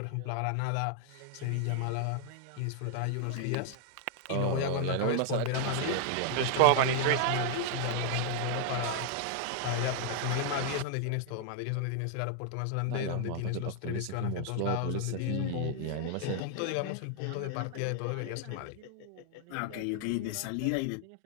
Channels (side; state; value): both; different; correlation 0.00